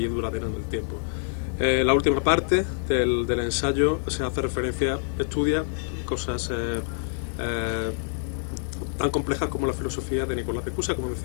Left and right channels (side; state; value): right; silent; digital silence